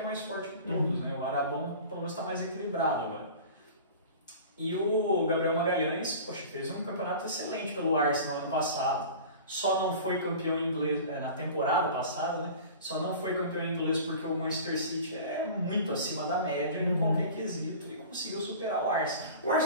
mais forte que todos. Né? O Arabão pelo menos está mais equilibrado agora. E o Gabriel Magalhães, poxa, fez um campeonato excelente pelo Arsenal ano passado. Só não foi campeão inglês na temporada passada, né? Só não foi campeão inglês porque o Manchester City é muito acima da média em qualquer quesito e conseguiu superar o Arsenal. O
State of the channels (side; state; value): both; inverted; correlation -0.39